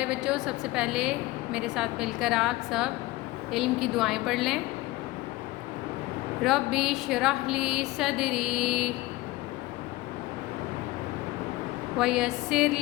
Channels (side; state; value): right; quieter; 19.4 dB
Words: بچوں، سب سے پہلے میرے ساتھ مل کر آپ سب علم کی دعائیں پڑھ لیں۔ ربی اشرح لی صدری ویسر